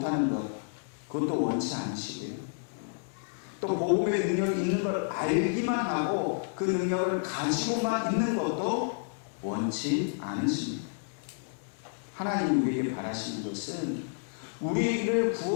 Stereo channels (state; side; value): silent; right; digital silence